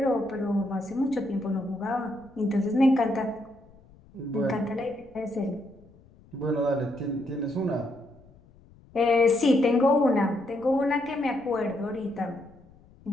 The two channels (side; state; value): left; noise; rumble, 26 dB below the sound